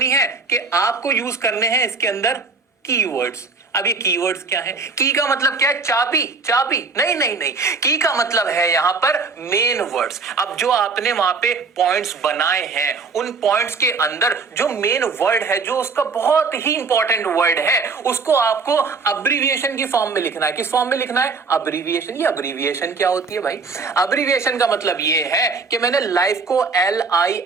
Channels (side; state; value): left; quieter; 4.4 dB